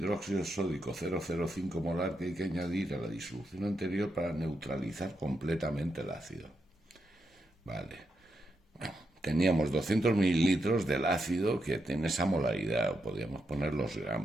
sódico 0,05 molar que hay que añadir a la disolución anterior para neutralizar completamente el ácido. Vale. Teníamos 200 mililitros del ácido que tiene esa molaridad, o podríamos poner los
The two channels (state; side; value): normal; both; correlation 0.83